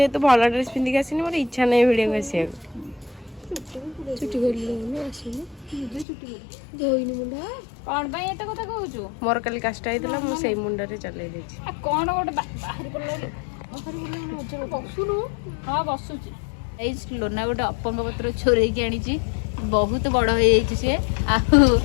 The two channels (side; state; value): right; drops out; at 6.1 s